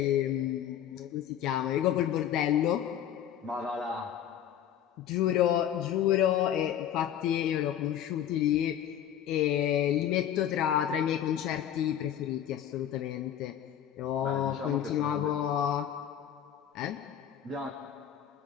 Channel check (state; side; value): quieter; right; 10.2 dB